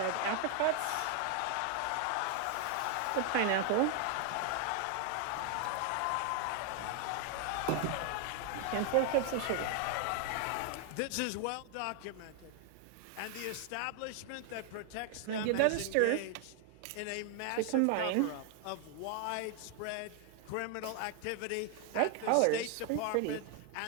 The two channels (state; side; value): different; both; correlation 0.00